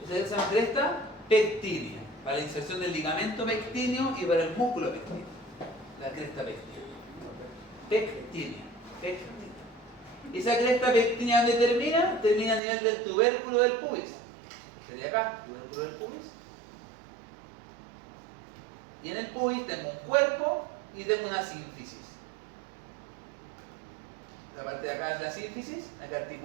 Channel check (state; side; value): drops out; left; at 12.6 s